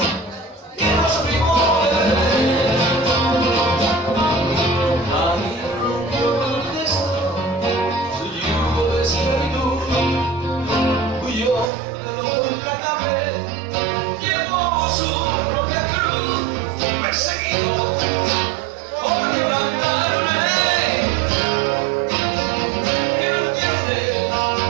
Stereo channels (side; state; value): left; drops out; at 11.7 s